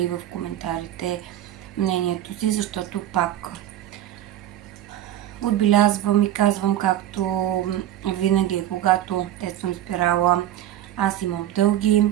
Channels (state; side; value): quieter; left; 12.5 dB